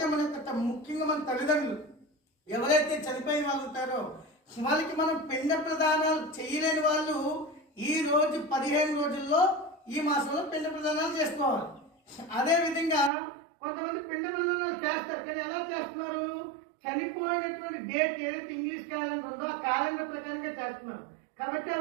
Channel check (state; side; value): drops out; left; at 13.1 s